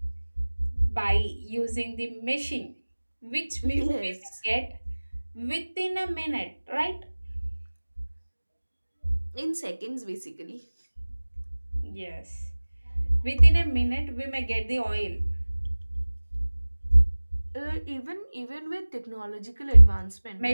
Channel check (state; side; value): inverted; both; correlation -1.00